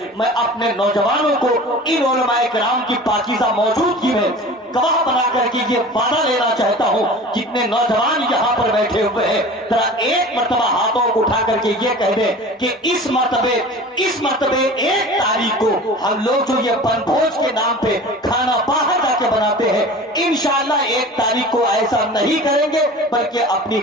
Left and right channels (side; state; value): both; normal; correlation 0.39